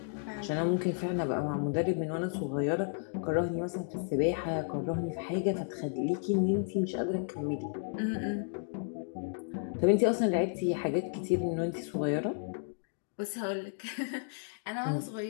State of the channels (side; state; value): right; silent; digital silence